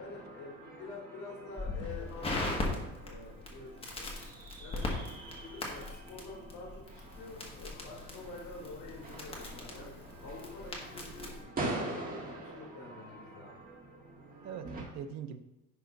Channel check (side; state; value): both; normal; correlation 0.31